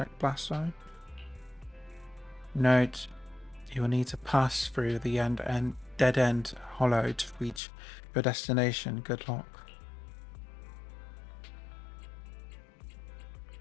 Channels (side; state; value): right; drops out; at 7.6 s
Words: blast zone. Note, you will need to pass through the dead end hollow to reach your destination. Good luck.